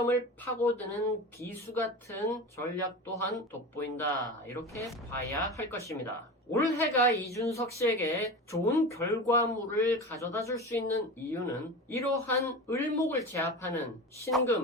파고드는 비수 같은 전략 또한 돋보인다 이렇게 봐야 할 것입니다. 올해가 이준석 씨에게 좋은 결과물을 가져다 줄 수 있는 이유는 이러한 을목을 제압하는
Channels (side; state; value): both; normal; correlation 0.29